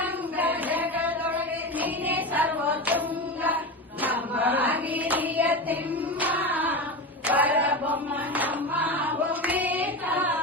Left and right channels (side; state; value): both; normal; correlation 0.22